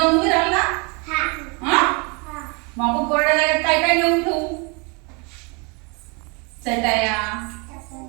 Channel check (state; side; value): quieter; left; 31.3 dB